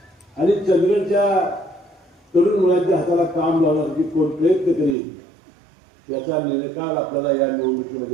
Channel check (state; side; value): drops out; left; at 5.0 s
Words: आणि चंदगडच्या तरुण मुलांच्या हाताला काम लावण्यासाठी कोण प्रयत्न करेल याचा निकाल आपल्याला या